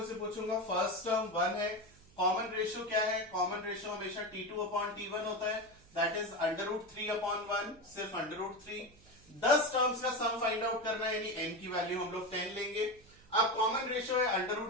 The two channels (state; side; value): noise; right; hum, 26 dB below the sound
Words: से पूछूंगा, फर्स्ट टर्म 1 है, कॉमन रेशियो क्या है? कॉमन रेशियो हमेशा T2/T1 होता है, दैट इज √3/1, सिर्फ √3। 10 टर्म्स का सम फाइंड आउट करना है, यानी n की वैल्यू हम लोग 10 लेंगे। अब कॉमन रेशियो है